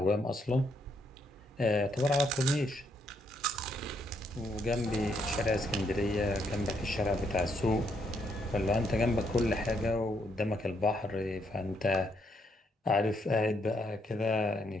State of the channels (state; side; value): normal; both; correlation 0.74